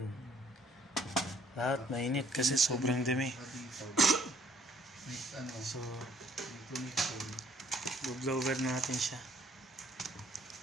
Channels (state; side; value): normal; both; correlation 0.62